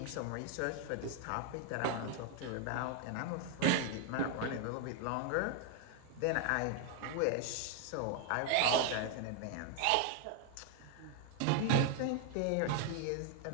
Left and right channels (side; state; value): both; different; correlation 0.01